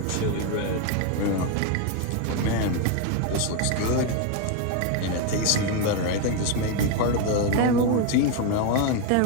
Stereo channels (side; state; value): both; different; correlation 0.01